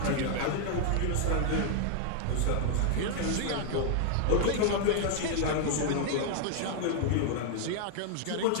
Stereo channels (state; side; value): different; both; correlation 0.00